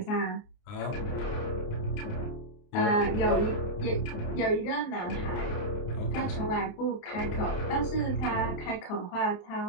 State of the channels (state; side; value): late; right; 29 ms